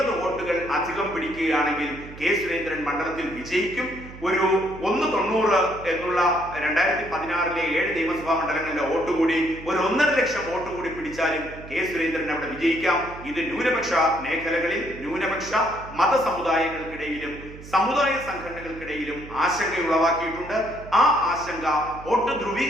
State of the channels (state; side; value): noise; right; hum, 15 dB below the sound